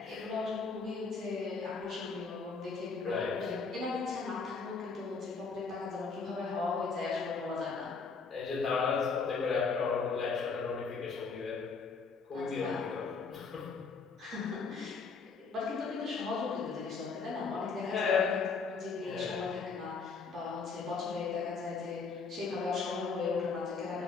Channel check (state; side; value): quieter; right; 4.9 dB